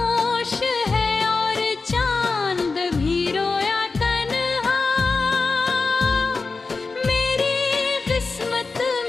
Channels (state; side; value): quieter; right; 4.1 dB